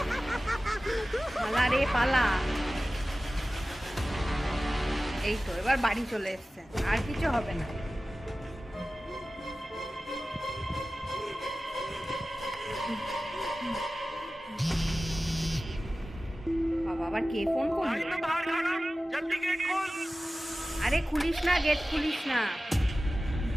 পালা রে পালা। এই তো এবার বাড়ি চলে এসছে, আর কিছু হবে না। বাবা, আবার কে ফোন করলো? আরে খুলিস না, গেট খুলিস না।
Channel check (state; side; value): normal; both; correlation 0.96